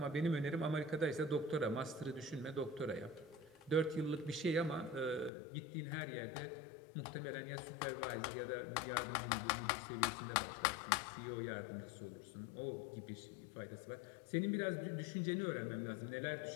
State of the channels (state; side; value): drops out; right; at 5.3 s